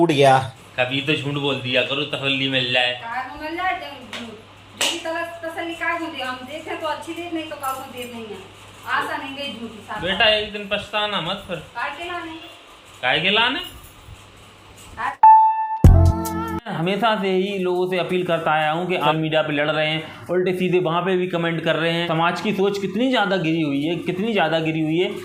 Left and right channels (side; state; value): both; identical; correlation 1.00